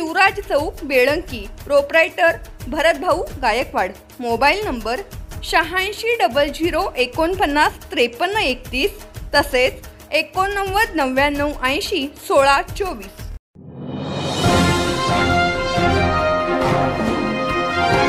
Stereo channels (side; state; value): both; identical; correlation 1.00